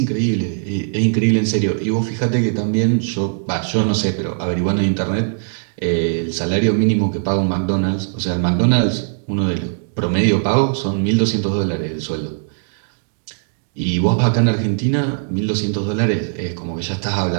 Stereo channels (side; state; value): left; silent; digital silence